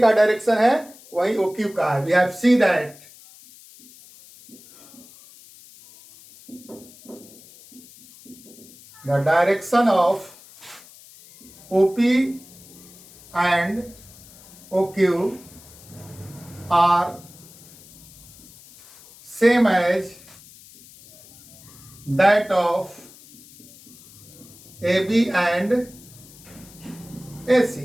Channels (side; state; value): left; noise; hiss, 22 dB below the sound